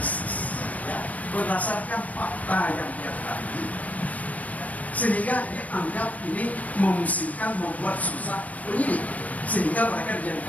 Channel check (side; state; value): right; late; 0.072 ms